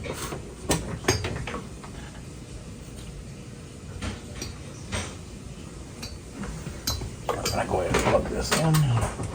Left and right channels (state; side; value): identical; both; correlation 1.00